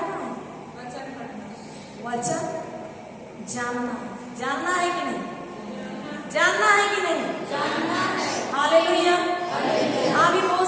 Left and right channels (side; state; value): both; identical; correlation 1.00